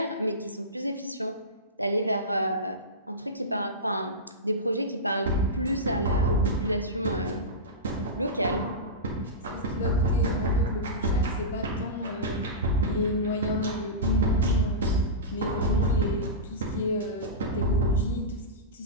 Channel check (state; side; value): normal; both; correlation -0.18